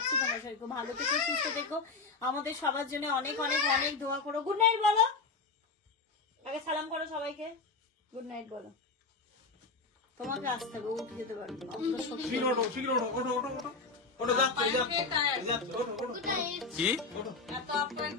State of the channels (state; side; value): quieter; right; 4.1 dB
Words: তোমরা সবাই খুব ভালো থেকো, সুস্থ থেকো, আমাদের সবার জন্য অনেক অনেক অনেক দোয়া করো। গুড নাইট বলো, আগে সালাম করো সবাইকে, গুড নাইট বলো। তোমাকে আসতে হবে, উঠে যেতে পারবে না। শীঘ্র ওঠো, শীঘ্র ওঠো, ওঠো ওঠো ওঠো। ওটা যাচ্ছে কি